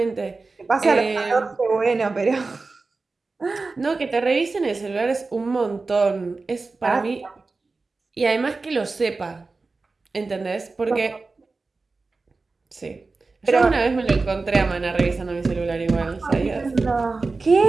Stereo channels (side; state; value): left; quieter; 3.8 dB